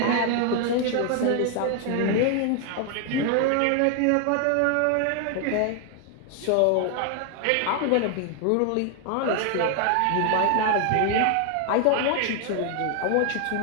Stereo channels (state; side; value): different; both; correlation 0.00